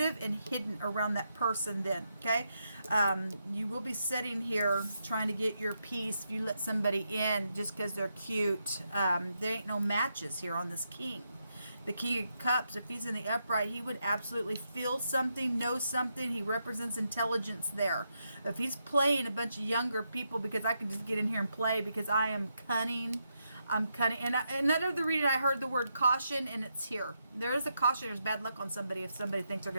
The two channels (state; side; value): inverted; both; correlation -0.82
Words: and hidden around that person then, okay? You will be sitting here trying to get your peace if you let somebody in just because they're cute. There ain't no matches here on this king. The King of Cups, if he's in the upright, he would absolutely feel something, know something. He represents intelligence there. If he's playing a bunch of younger people, because I can just get in here and play because I am cunning. I'm cunning. And another the reading, I heard the word caution, and it's here. There is a caution. There's bad luck on somebody if somebody thinks they're